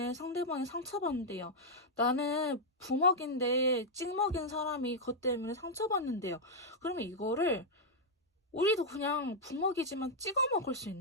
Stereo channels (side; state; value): both; normal; correlation -0.03